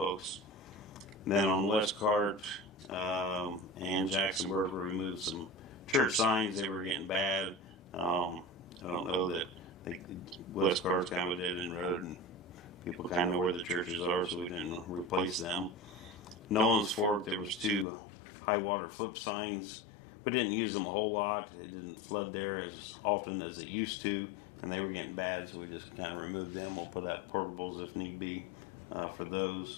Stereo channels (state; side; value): drops out; right; at 17.9 s